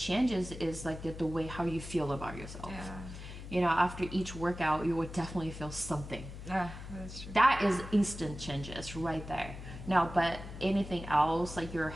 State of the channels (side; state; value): left; noise; hum, 11 dB below the sound